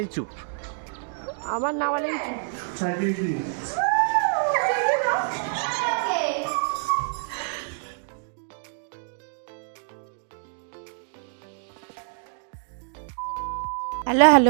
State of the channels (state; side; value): silent; left; digital silence